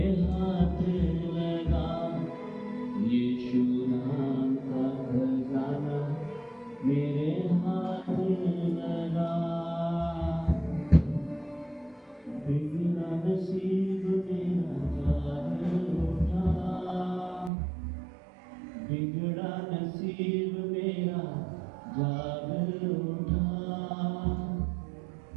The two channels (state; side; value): drops out; left; at 17.5 s